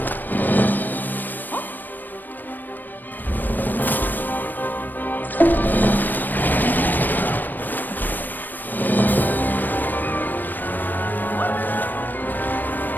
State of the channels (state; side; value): late; right; 0.090 ms